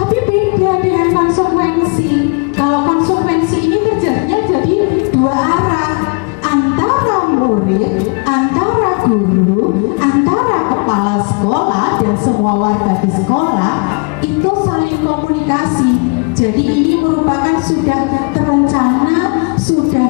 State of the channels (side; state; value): right; quieter; 33.9 dB